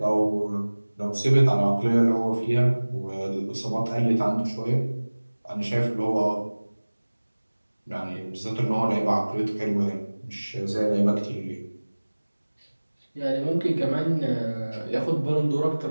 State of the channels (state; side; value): inverted; both; correlation -1.00